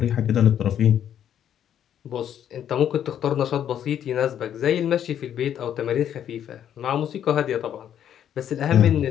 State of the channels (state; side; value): quieter; right; 9.8 dB